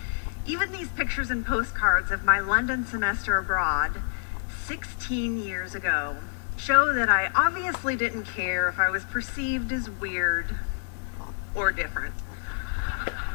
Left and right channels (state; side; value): silent; right; digital silence